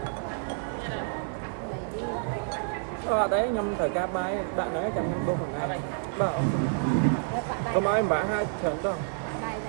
ở đấy nhâm thời ca bay bạn đấy chăm nhâm đô phần này bảo ông Các bạn đây, có ai bả hai trận đâu bạn đây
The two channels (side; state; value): left; silent; digital silence